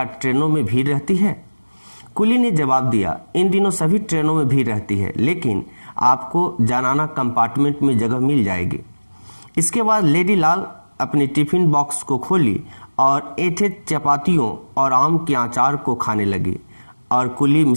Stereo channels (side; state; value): both; inverted; correlation -1.00